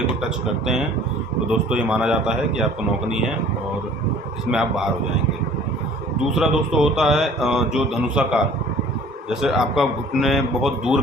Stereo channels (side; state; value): both; normal; correlation 0.50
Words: को टच करते हैं तो दोस्तों ये माना जाता है कि आपको नौकनी है और इसमें आप बाहर हो जाएंगे। दूसरा दोस्तों होता है जो धनुषाकार, जैसे आपका घुटने बहुत दूर